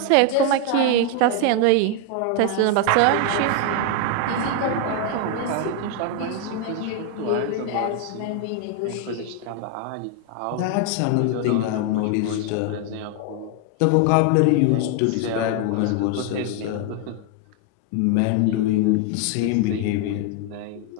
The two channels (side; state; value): both; different; correlation 0.00